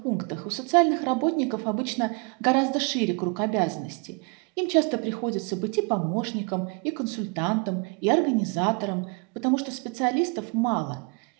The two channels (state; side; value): quieter; left; 32.9 dB